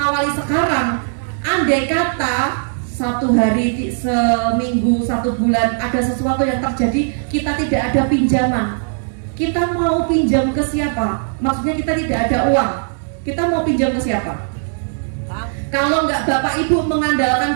sekarang, andai kata 1 hari, seminggu, 1 bulan ada sesuatu yang terjadi, kita tidak ada pinjaman. Kita mau pinjam ke siapa? Maksudnya kita tidak ada uang. Kita mau pinjam ke siapa? Kalau nggak Bapak Ibu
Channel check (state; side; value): silent; left; digital silence